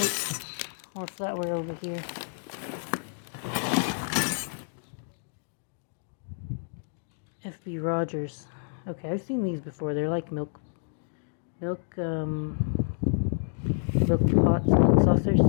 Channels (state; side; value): silent; right; digital silence